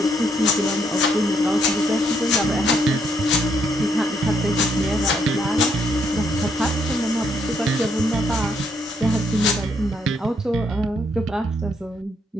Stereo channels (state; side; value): normal; both; correlation 0.73